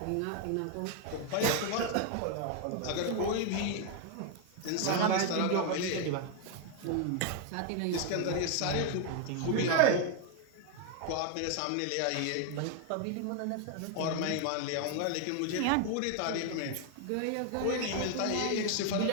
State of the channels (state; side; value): different; both; correlation 0.00